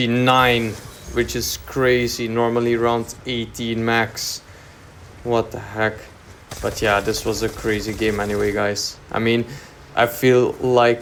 which is crazy. Normally round 18 max. What the heck. But yeah, this was a crazy game anyway, guys. I mean, I feel like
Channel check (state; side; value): identical; both; correlation 1.00